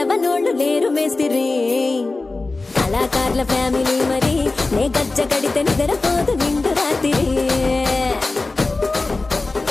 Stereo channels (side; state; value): right; quieter; 3.4 dB